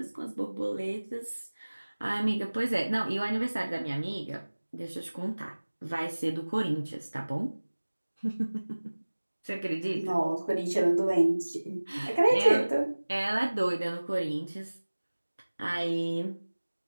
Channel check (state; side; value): inverted; both; correlation -1.00